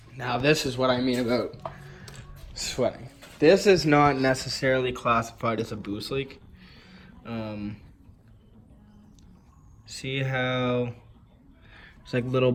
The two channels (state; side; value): identical; both; correlation 1.00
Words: Now this is what I mean about sweating. This is not necessarily classified as a boost leak. See how there's like little